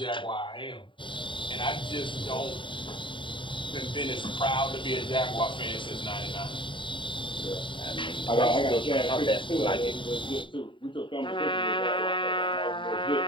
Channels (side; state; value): right; late; 0.24 ms